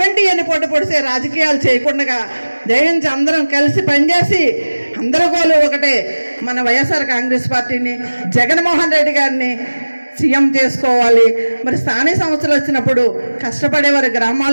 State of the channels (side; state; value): both; inverted; correlation -1.00